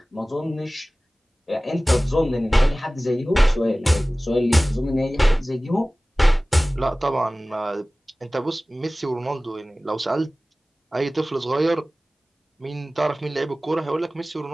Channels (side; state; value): both; normal; correlation 0.98